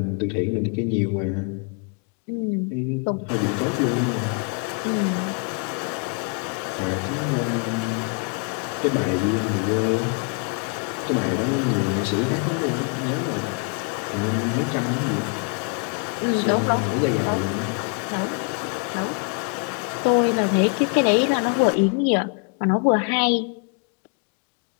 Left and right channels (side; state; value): right; quieter; 37.0 dB